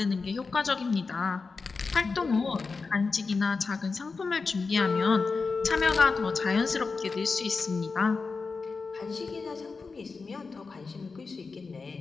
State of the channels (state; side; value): quieter; right; 4.4 dB